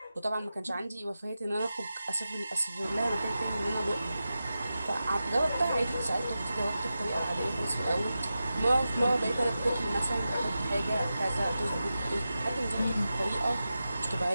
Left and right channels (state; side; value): inverted; both; correlation -0.92